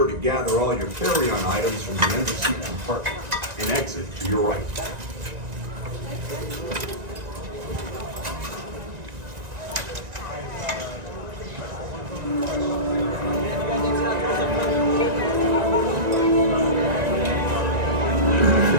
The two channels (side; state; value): left; late; 1.9 ms